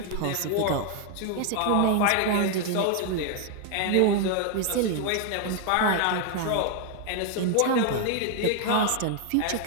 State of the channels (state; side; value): different; both; correlation 0.00